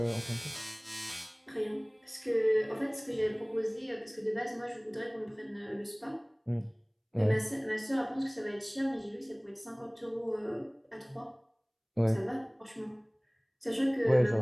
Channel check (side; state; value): both; identical; correlation 1.00